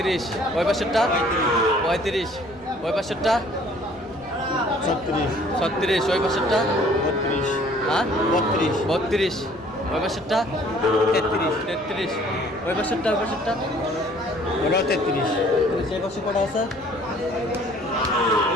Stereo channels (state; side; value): noise; right; rumble, 27 dB below the sound